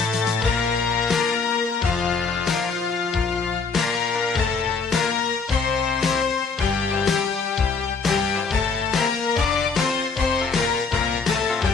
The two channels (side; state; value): right; quieter; 4.8 dB